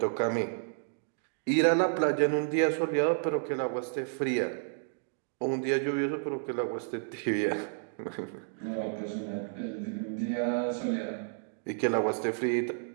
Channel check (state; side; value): silent; left; digital silence